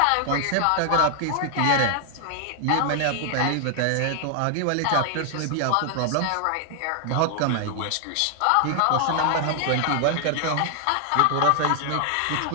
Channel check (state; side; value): different; both; correlation 0.00